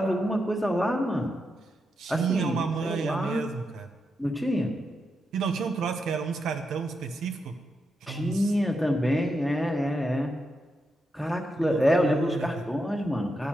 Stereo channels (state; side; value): normal; both; correlation 0.85